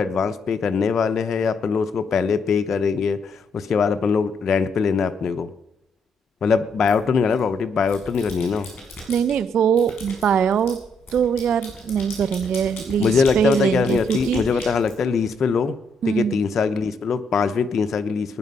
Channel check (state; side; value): normal; both; correlation 0.73